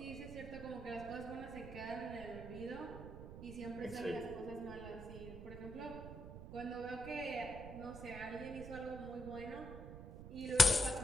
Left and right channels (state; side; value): noise; right; rumble, 11 dB below the sound